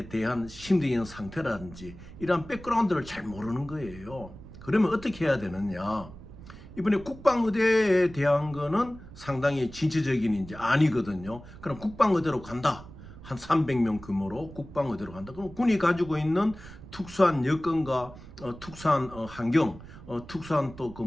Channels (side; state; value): right; noise; rumble, 16 dB below the sound